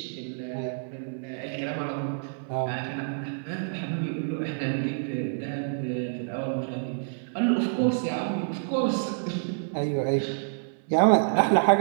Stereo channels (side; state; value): left; silent; 59 dB below the other